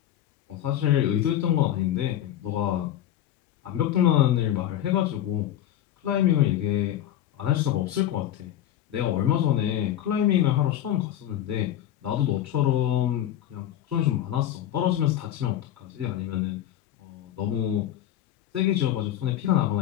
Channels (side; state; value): right; quieter; 11.7 dB